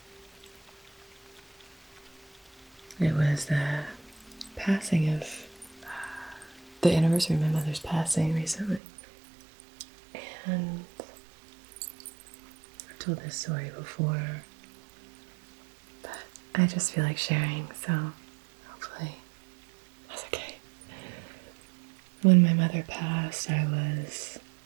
It was the passing of the anniversary of my mother's passing recently. And I've told this story before, but I just feel like sharing, so hopefully that's okay. When my mother passed, I was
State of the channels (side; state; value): left; drops out; at 8.8 s